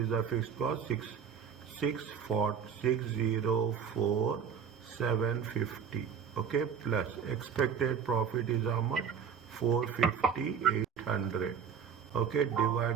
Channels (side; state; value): left; quieter; 7.2 dB